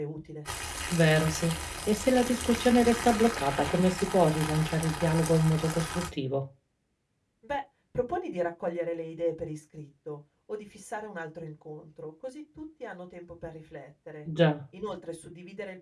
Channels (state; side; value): identical; both; correlation 1.00